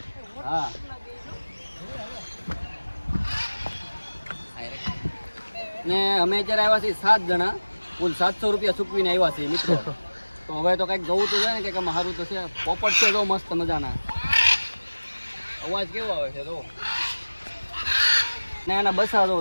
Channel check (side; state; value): both; inverted; correlation -1.00